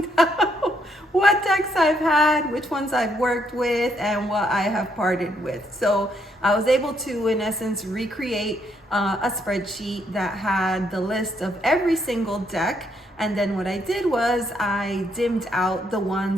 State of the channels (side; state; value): both; normal; correlation 0.74